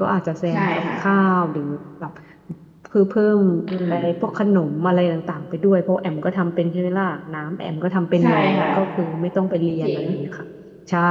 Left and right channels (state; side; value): identical; both; correlation 1.00